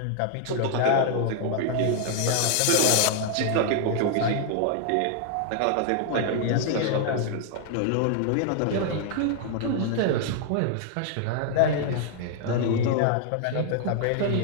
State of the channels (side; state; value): both; different; correlation 0.00